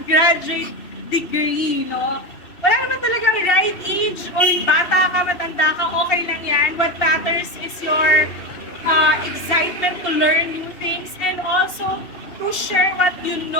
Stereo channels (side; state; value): right; late; 2.7 ms